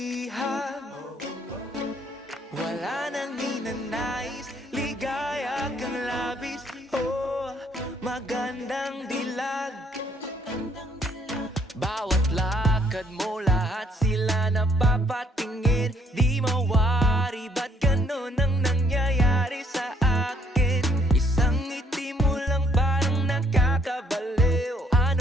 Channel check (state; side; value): normal; both; correlation 0.66